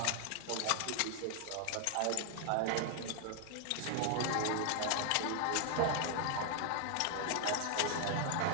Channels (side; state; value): both; different; correlation 0.00